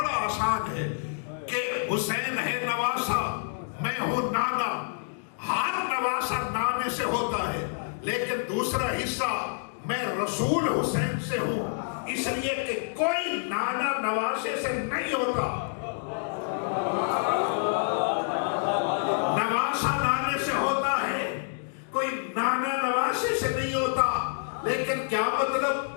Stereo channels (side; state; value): right; silent; digital silence